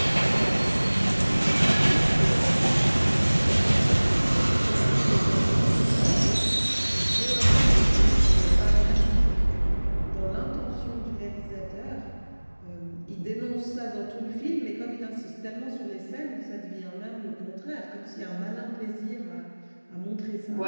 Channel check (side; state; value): both; inverted; correlation -1.00